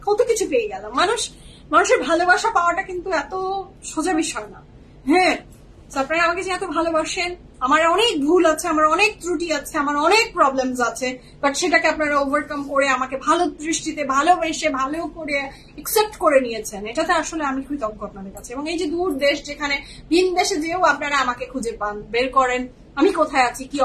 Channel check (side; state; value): both; identical; correlation 1.00